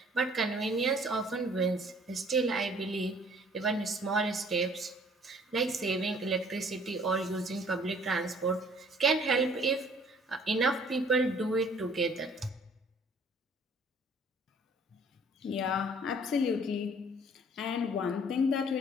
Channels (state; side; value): normal; both; correlation 0.56